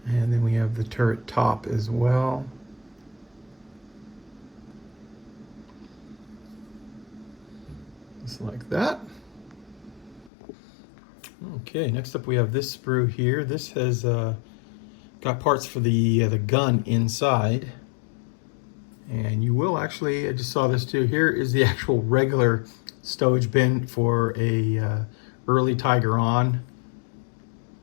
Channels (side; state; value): right; drops out; at 10.3 s